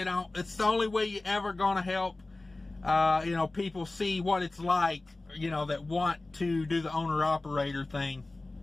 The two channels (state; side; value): quieter; right; 3.0 dB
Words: the only way you're ever going to help, people see what it's like, that want to do the owner-operator thing.